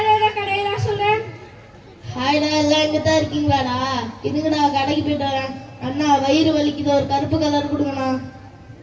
ஏதாவது கடையில சொல்ற? ஹாய்டா, எல்லாம் இங்க தான் இருக்கீங்களாடா? இதுக்குடா கடைக்கு போயிட்டு வரேன். அண்ணா, வயிறு வலிக்குது, ஒரு கருப்பு கலர் கொடுங்கண்ணா.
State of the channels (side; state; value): both; identical; correlation 1.00